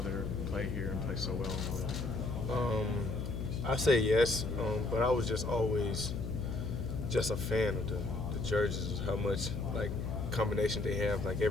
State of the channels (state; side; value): noise; left; hum, 4 dB below the sound